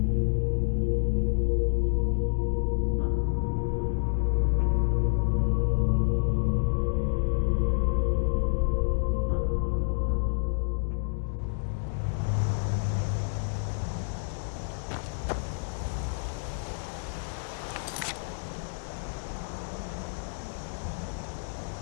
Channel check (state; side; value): silent; right; digital silence